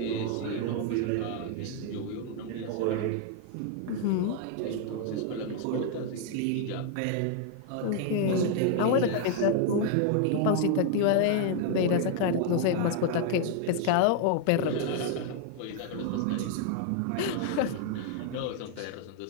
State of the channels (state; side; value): different; both; correlation 0.00